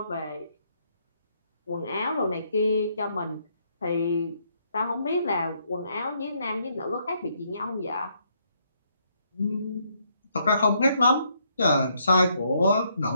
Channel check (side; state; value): both; inverted; correlation -0.73